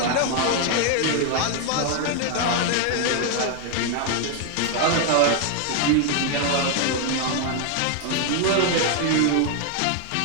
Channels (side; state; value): both; different; correlation 0.00